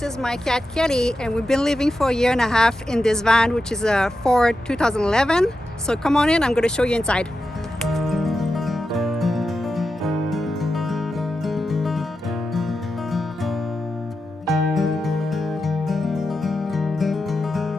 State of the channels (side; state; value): both; normal; correlation 0.90